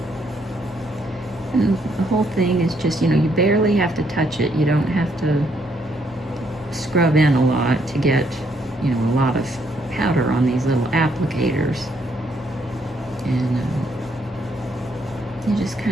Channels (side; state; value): both; normal; correlation 0.72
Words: And the whole thing is just, you barely have to touch it. You don't have to scrub in a lot to get, a lot of powder on these little applicators. And you just